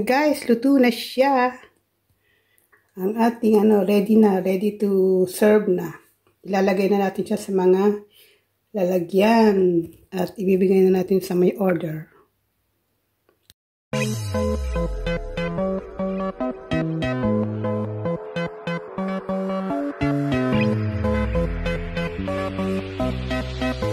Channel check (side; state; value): both; identical; correlation 1.00